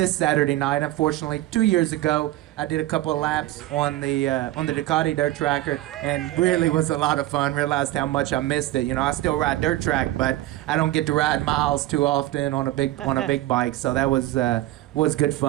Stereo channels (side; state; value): left; quieter; 15.9 dB